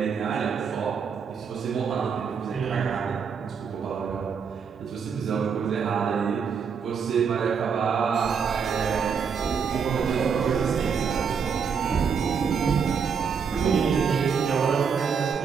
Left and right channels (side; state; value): left; quieter; 6.4 dB